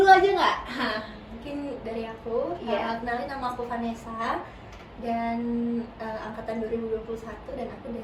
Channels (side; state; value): both; identical; correlation 1.00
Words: aja nggak? Mungkin dari aku, Iya. kenalin, nama aku Vanessa dan angkatan 2021 dan aku